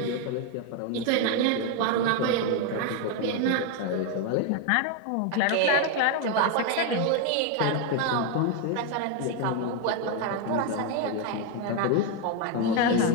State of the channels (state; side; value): different; both; correlation 0.01